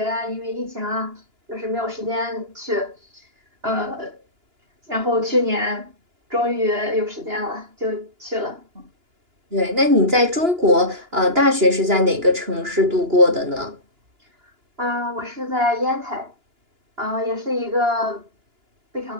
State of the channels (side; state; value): left; late; 2.9 ms